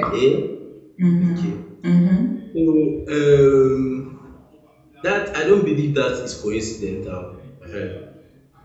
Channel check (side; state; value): both; identical; correlation 1.00